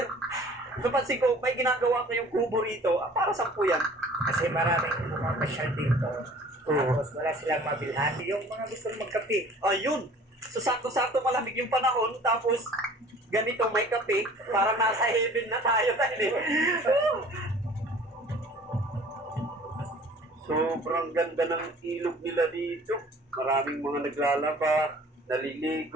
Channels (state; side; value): normal; both; correlation 0.49